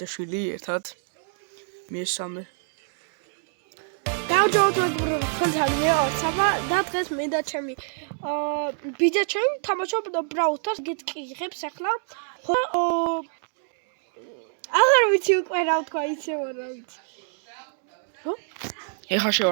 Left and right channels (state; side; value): silent; left; 61 dB below the other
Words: ერთად. მესამე. გამარჯობა მეგობრებო, თქვენთან ვარ საბა და დღეს მე და ჩემი ბიძაჩემი თამაშობ Brawl Stars გეტყიღებს ახლა. ხო აღარ ვიცი უკვე რა ვთქვა, იცი რა ვიცი. ხო? ეხლა